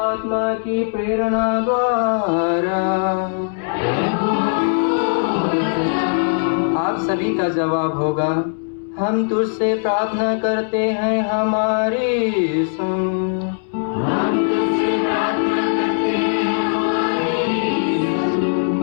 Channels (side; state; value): right; silent; 66 dB below the other